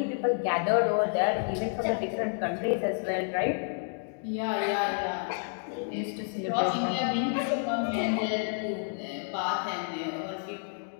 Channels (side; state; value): right; silent; 58 dB below the other